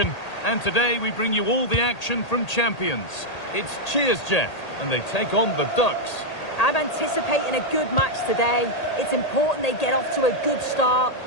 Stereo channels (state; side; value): late; right; 1.8 ms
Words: and today we bring you all the action from Champions. It's Cheers Jeff, and they take on the Ducks. I'm anticipating a good match today. It's important they get off to a good start,